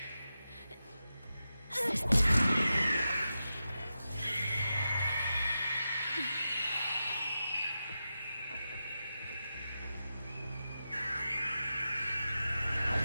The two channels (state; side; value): inverted; both; correlation -0.91